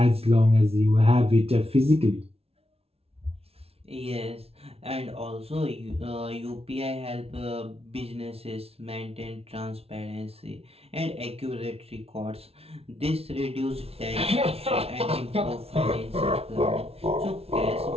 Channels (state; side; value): late; left; 0.29 ms